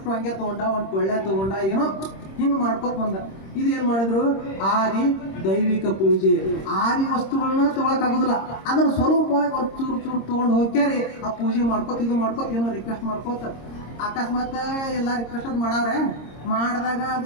ಹಂಗೆ ತೊಗೊಂಡ, ಒಂದು ಟೊಳ್ಳೆ ತೊಗೊಂಡ, ಏನೋ ಹಿಂಗೆ ಮಾಡ್ಕೊತ ಬಂದ. ಇದು ಏನು ಮಾಡಿದ್ರು, ಆದಿ ದೈವಿಕ ಪೂಜೆ. ಆದಿ ವಸ್ತುಗಳನ್ನ ತೊಗೊಳಕ್ಕಾಗೋದಿಲ್ಲ, ಅದ್ರ ಸ್ವರೂಪವಾಗಿ ಒಂದು ಚೂರು ತೊಗೊಂಡು ಹೋಗ್ಯಾರಿ ಆ ಪೂಜೆ ಮಾಡ್ಕೊತ ಏನೋ ರಿಕ್ವೆಸ್ಟ್ ಮಾಡ್ಕೋತ. ಅಕಸ್ಮಾತ್ ಎಲ್ಲ ರಿಕ್ವೆಸ್ಟ್ ಅದು ಮಾಡವ್ರೆ, ಮಾಡಿದಾಗ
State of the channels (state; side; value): late; right; 26 ms